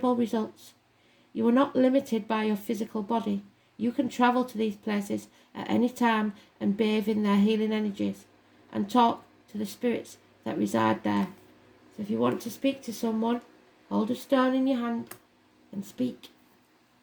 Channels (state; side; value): identical; both; correlation 1.00